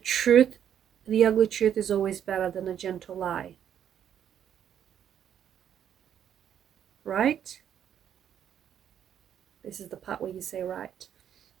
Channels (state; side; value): quieter; left; 9.4 dB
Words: the ugly truth, is always better than a gentle lie. Right? This is the part where you say right.